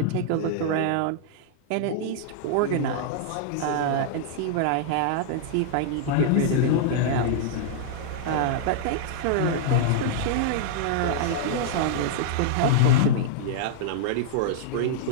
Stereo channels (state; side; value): different; both; correlation -0.01